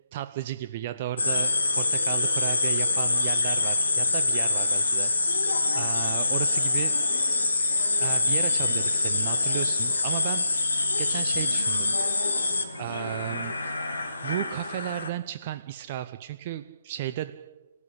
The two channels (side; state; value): both; inverted; correlation -0.80